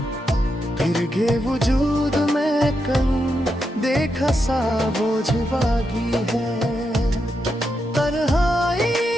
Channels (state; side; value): normal; both; correlation 0.84